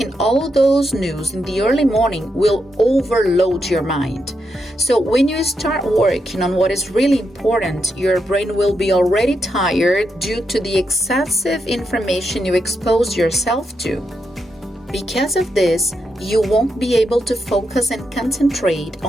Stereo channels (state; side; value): normal; both; correlation 0.83